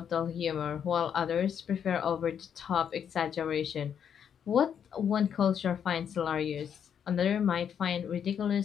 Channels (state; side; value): quieter; right; 8.2 dB